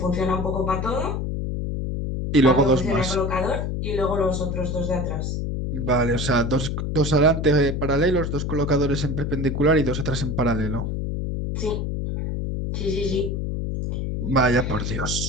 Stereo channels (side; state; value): left; noise; hum, 2 dB below the sound